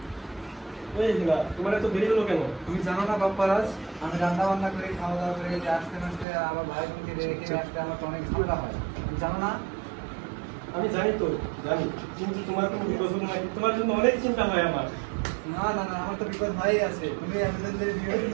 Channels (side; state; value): left; drops out; at 6.2 s